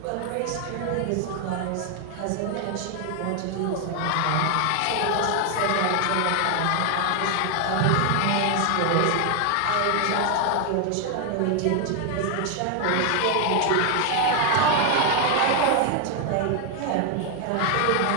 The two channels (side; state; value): both; different; correlation 0.01